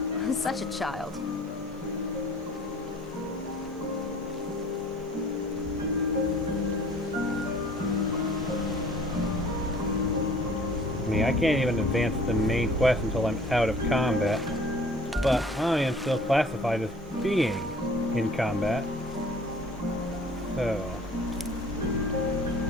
Such a child. I mean, I can't even advance the main quest until I'm out of combat. But I am still classified as being in combat. So...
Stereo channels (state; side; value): normal; both; correlation 0.50